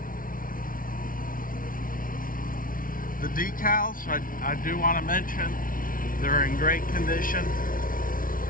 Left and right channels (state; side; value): late; right; 0.40 ms